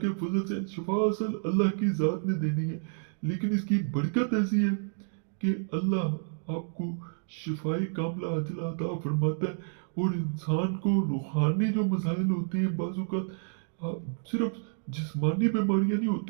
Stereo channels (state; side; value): silent; left; digital silence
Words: फजल से शिफा असल अल्लाह की ज़ात ने देनी है, लेकिन इसकी बरकत ऐसी है कि अल्लाह आपको शिफाई कामला अजला अता फरमाता है। और इंसान को रूहानी जो मसाइल होते हैं बाजू का, सिर्फ जिस्मानी बीमारियां नहीं